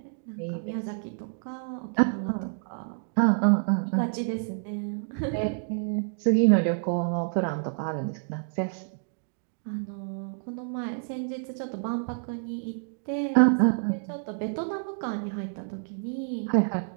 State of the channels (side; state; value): left; silent; digital silence